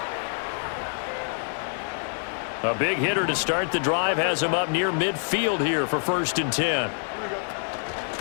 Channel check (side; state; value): right; silent; 60 dB below the other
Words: A big hitter to start the drive has him up near midfield here for 1st and 10.